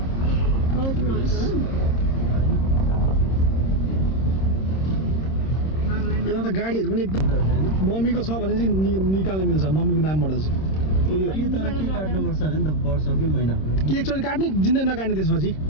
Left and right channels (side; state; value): right; late; 26 ms